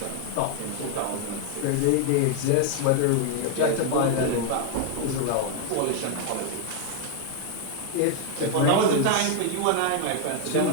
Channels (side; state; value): both; different; correlation 0.00